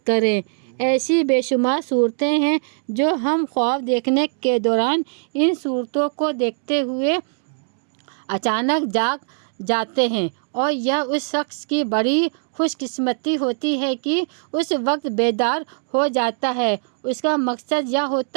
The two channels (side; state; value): left; silent; digital silence